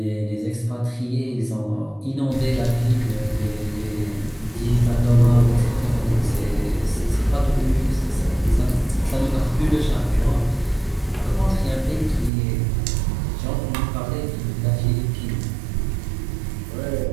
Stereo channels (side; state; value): left; drops out; at 12.3 s